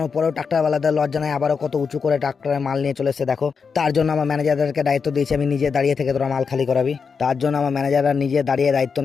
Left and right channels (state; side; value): quieter; right; 5.6 dB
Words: পরেও ট্রাক্টরওয়ালাদের লজ্জা নাই, আবারও কত উঁচু করে ট্রাক্টরে মাল নিয়ে চলে এসে দেখো। তার জন্য আমার ম্যানেজারদেরকে দায়িত্ব দিয়েছি আমি নিজে দাঁড়িয়ে থেকে তোরা মাল খালি করাবি। তার জন্য আমার ম্যানেজাররা নিজে দাঁড়িয়ে দায়িত্ব